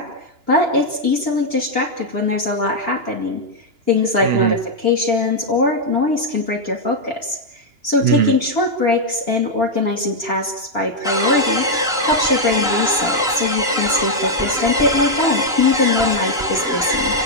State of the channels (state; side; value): late; left; 2.9 ms